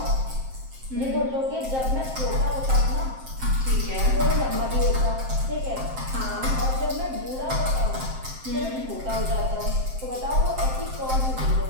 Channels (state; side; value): late; left; 7.6 ms